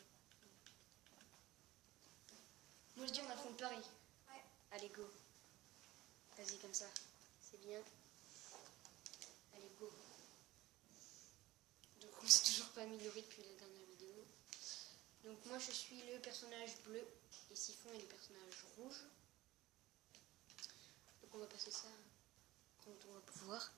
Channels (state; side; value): quieter; left; 17.8 dB